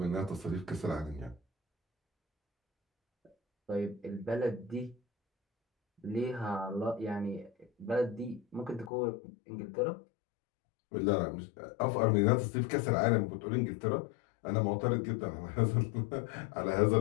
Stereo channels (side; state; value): right; drops out; at 8.9 s